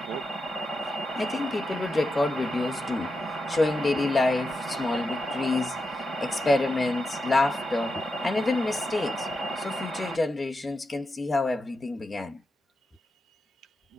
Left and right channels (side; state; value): both; normal; correlation 0.87